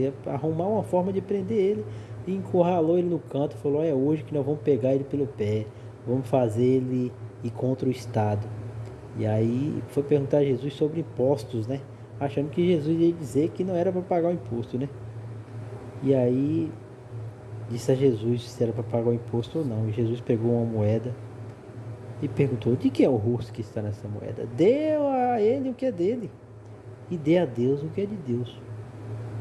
arrumar uma forma de prender ele e encurralou ele no canto e falou: é hoje que nós vamos pegar ele pelo pé, vamos fazer ele ir contra o Estado. E aí foi perguntar a Jesus sobre impostos, né? Achando que Jesus ia dizer que não era para pagar o imposto, né? E aí disse a Jesus se era para pagar o imposto ou não. E Jesus pegou uma moeda e perguntou: de quem é o rosto que está nessa moeda? Deu a ele o que é dele e dê a Deus o que é de Deus.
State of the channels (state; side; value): identical; both; correlation 1.00